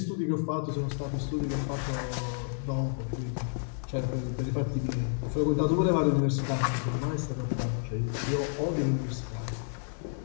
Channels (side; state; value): right; silent; 58 dB below the other